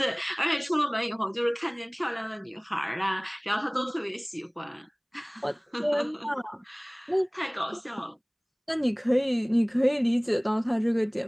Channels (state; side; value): identical; both; correlation 1.00